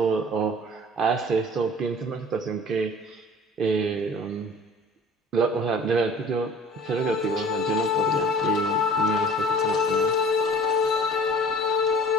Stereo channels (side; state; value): both; normal; correlation 0.46